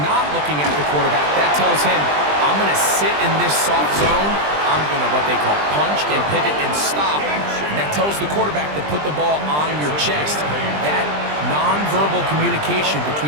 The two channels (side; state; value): left; late; 20 ms